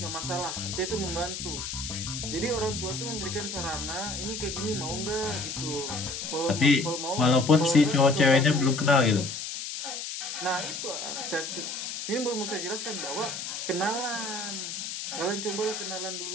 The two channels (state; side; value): noise; left; hiss, 6 dB below the sound